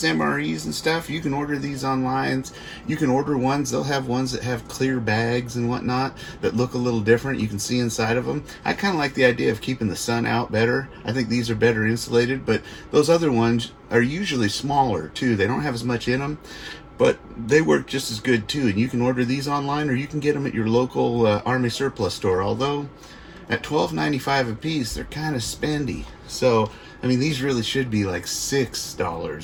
MREs and stuff, you can order these online. You can order ones. They'll have ones that have clear bags and whatnot that look a little different. You can see inside of them. I kind of like the idea of keeping the sun out better. I think these are better insulated, but those other ones are usually smaller, too. They don't have as much in them, but they work just as good, too. And you can order these online, or you can get them at your local Army surplus store, although at $12.95 a piece, they're kind of spendy. So, I mean, these really should be like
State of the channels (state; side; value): identical; both; correlation 1.00